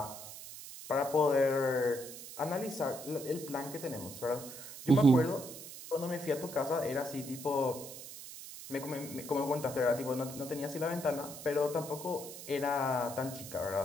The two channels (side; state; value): right; noise; hiss, 12 dB below the sound